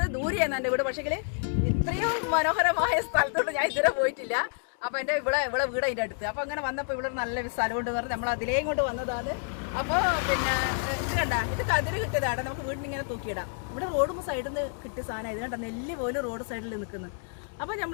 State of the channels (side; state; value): right; silent; 59 dB below the other